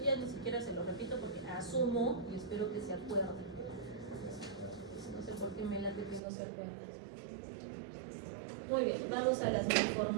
ya ni siquiera se lo repito porque asumo y espero que se acuerden. No sé por qué me late que no se acuerdan. Muy bien, vamos a las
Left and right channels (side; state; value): left; drops out; at 6.2 s